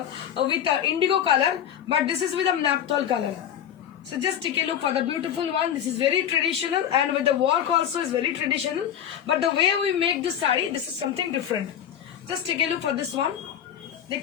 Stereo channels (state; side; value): quieter; right; 9.7 dB